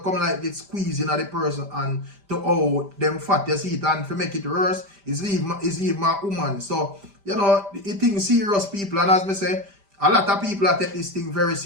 come like it squeezing at the person and to how them fat, you see it, and to make it worse, is even a woman. So, you know, it thing serious, people, and as me say, a lot of people take this thing very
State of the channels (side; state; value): left; late; 5.1 ms